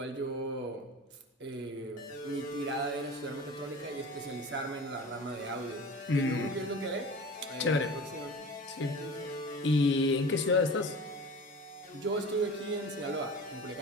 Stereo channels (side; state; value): both; normal; correlation 0.36